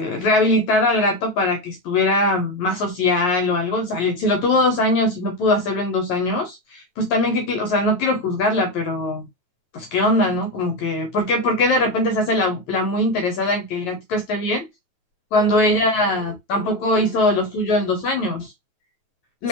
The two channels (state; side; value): late; right; 9.2 ms